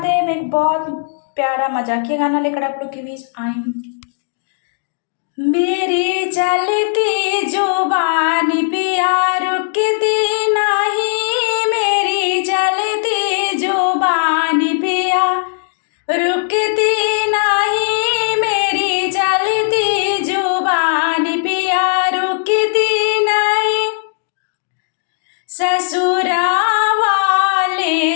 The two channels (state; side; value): silent; right; digital silence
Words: मैं एक बहुत प्यारा मजाकिया गाना लेकर आप लोग के बीच आई हूँ। मेरी चलती जुबान पिया रुकती नहीं, मेरी चलती जुबान पिया रुकती नहीं, मेरी चलती जुबान पिया रुकती नहीं। ससुरा